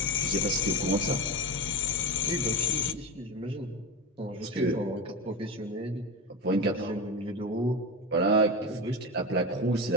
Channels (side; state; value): both; normal; correlation 0.21